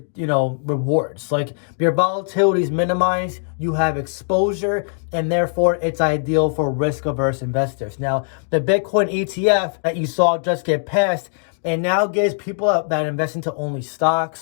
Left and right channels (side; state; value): right; silent; digital silence